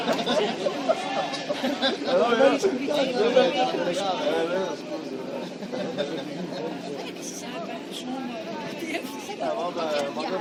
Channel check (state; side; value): identical; both; correlation 1.00